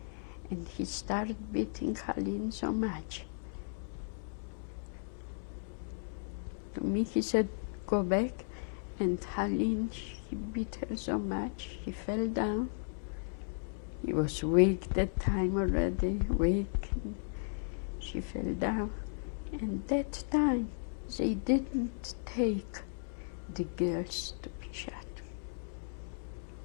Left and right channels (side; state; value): right; silent; digital silence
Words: and he started beating Haline so much. To me he said, go back, and Haline, he beat her so much, he fell down. He was weak that time already, weak. She fell down, and that time they didn't take the girls to be shot.